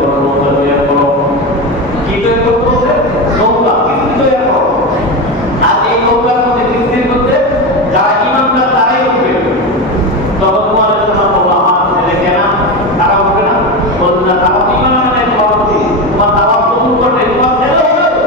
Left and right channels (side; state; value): both; normal; correlation 0.18